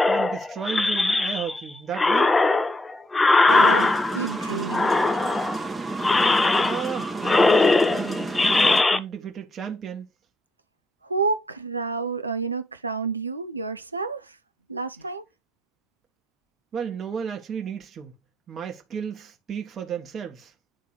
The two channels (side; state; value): both; normal; correlation 0.77